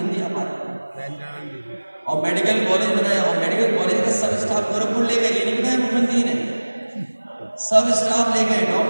आप आ रहे। और मेडिकल कॉलेज बनाया, और मेडिकल कॉलेज का सब स्टाफ गोरखपुर ले गए। ये नहीं बताया मुख्यमंत्री ने, सब स्टाफ ले गए,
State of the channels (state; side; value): inverted; both; correlation -1.00